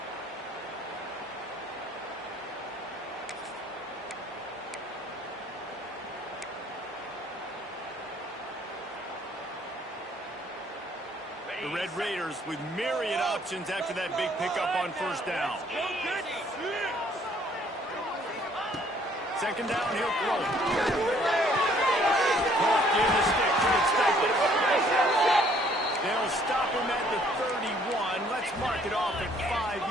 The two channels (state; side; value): normal; both; correlation 0.62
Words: The Red Raiders with myriad options after that big pickup on 1st down. 2nd down, he'll throw it. Give the stick to expect it. They'll stop him at the 31. Let's mark it off at 5